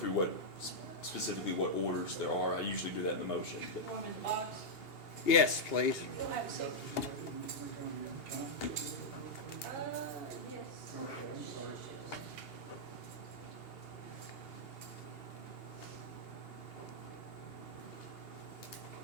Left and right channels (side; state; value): right; late; 2.8 ms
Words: specifically what orders there are. I usually do that in the motion, but Want him in the box? Yes, please. You'll have a seat. Yes.